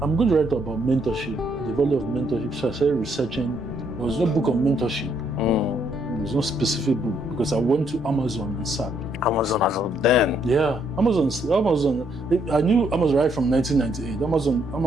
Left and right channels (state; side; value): normal; both; correlation 0.71